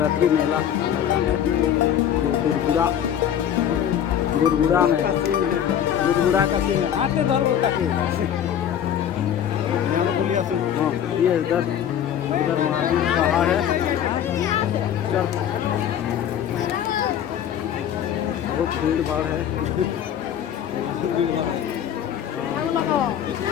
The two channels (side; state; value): right; quieter; 9.6 dB